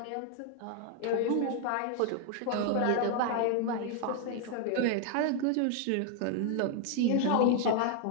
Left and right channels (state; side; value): different; both; correlation 0.00